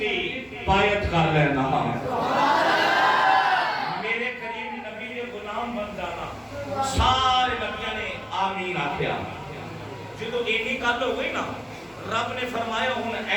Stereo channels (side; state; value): both; identical; correlation 1.00